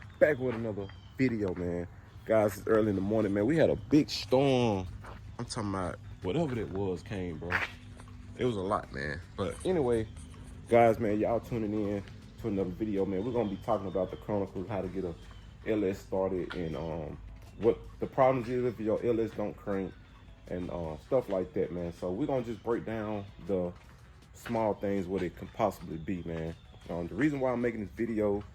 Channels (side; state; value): both; identical; correlation 1.00